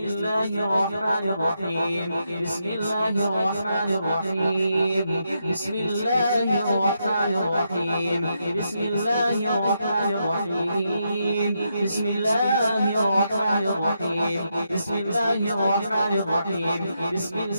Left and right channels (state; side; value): inverted; both; correlation -0.81